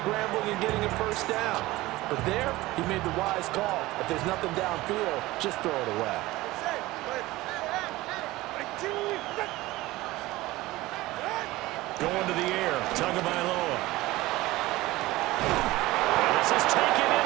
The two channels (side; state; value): left; quieter; 18.7 dB